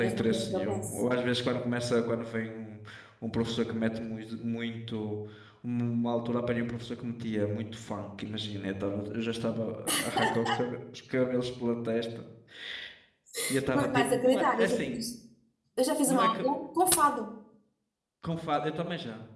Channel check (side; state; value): both; identical; correlation 1.00